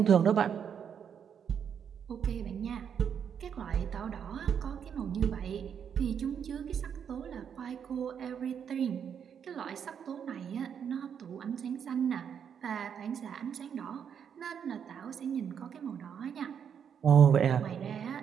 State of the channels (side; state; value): left; quieter; 7.8 dB